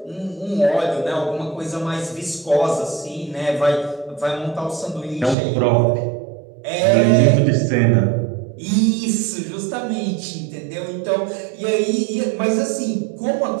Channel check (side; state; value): left; drops out; at 5.4 s